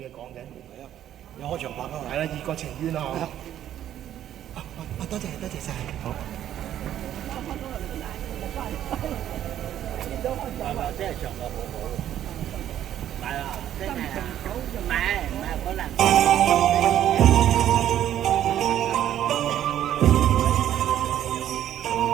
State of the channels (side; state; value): left; quieter; 11.3 dB